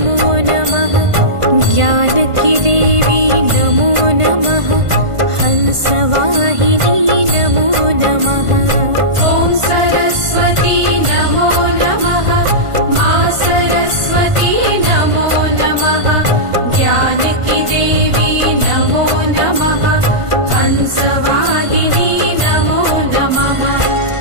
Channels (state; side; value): late; left; 1.5 ms